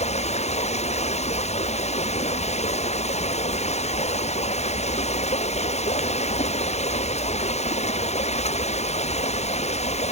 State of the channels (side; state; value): right; late; 0.32 ms